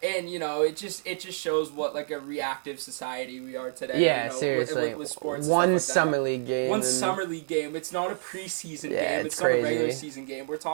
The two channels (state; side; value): silent; left; 59 dB below the other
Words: And it just shows what like a reactive society we are today. Yeah, with sports. One and stuff like summer league game. One summer league game. It's not a preseason game. It's not a regular season game. We're